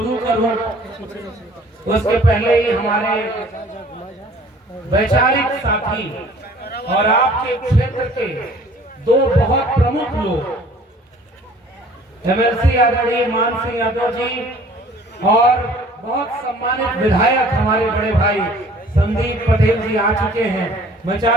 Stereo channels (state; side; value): normal; both; correlation 0.52